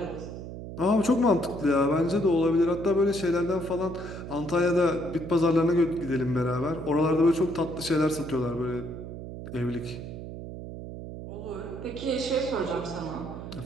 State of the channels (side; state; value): right; noise; hum, 10 dB below the sound